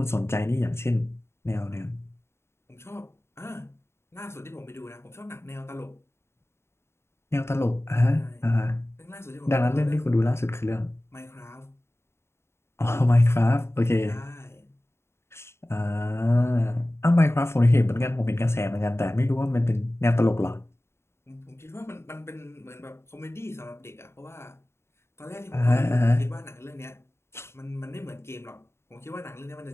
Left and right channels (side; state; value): right; late; 0.12 ms